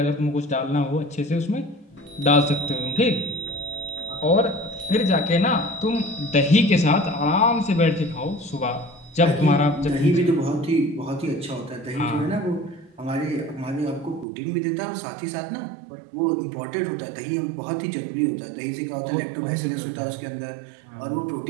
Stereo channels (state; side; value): drops out; left; at 14.2 s